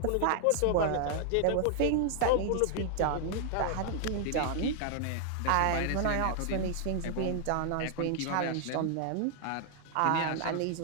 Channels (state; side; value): different; both; correlation 0.00